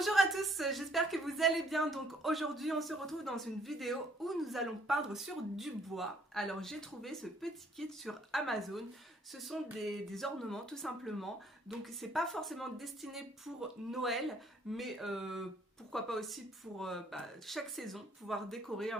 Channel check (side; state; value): both; normal; correlation 0.63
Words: à tous, j'espère que vous allez bien. Donc aujourd'hui on se retrouve dans une vidéo où nous allons peindre sur du bois. Alors j'ai trouvé ce petit kit sur Amazon. Ce sont des ornements tout simplement. Donc c'est pas forcément destiné pour Noël, mais pourquoi pas aussi pour chaque saison, pouvoir décorer